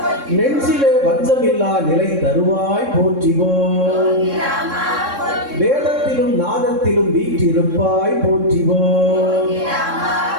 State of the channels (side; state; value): left; late; 3.6 ms